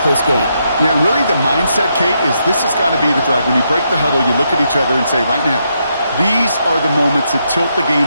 close game. Yeah, really the mindset, Kate, is this has got to be the drive. When you break the huddle, you look at each other and say, right now, these are the moments that tilt the game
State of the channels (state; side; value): inverted; both; correlation -0.79